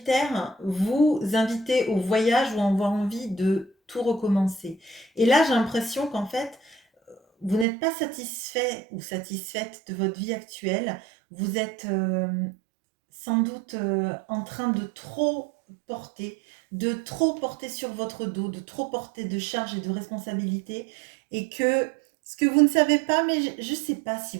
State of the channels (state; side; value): drops out; left; at 7.7 s